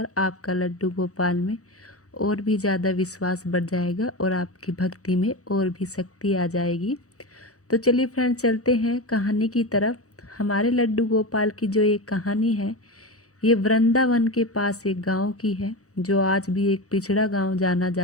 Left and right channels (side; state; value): right; late; 0.65 ms